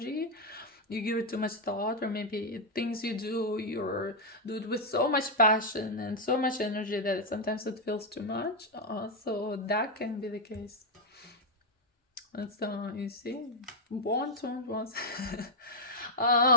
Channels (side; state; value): both; normal; correlation -0.01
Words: you give it too much thought, or maybe things you do, do it with so much passion and so much energy that sometimes it feels too much. So that can be the case. That's you see, want.